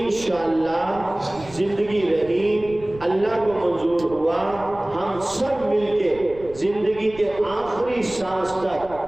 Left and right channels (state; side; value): noise; right; rumble, 19 dB below the sound